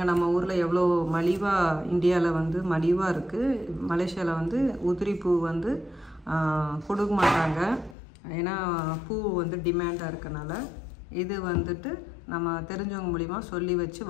நம்ம ஊரில் எவ்வளோ மலிவாக, இந்தியாவில் வந்து மலிவாக இருக்குது. மலேசியாவில் வந்து உதிரி பூ வந்து கொடுக்க மாட்டாங்க. ஏன்னா பூ வந்து டிமாண்டாக இருக்கனால இது வந்துட்டு நம்ம தெரிஞ்சவங்க மூலிமா சொல்லி வச்சு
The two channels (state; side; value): drops out; right; at 8.0 s